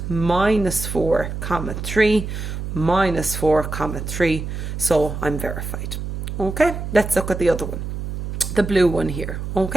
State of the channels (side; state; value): right; noise; hum, 5 dB below the sound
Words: Minus 4 comma 3, minus 4 comma 3. So I'm verified. Okay, let's look at the other one. The blue one here.